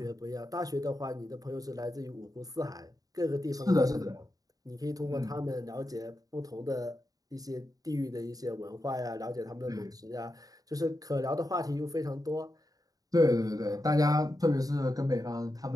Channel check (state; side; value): late; left; 0.18 ms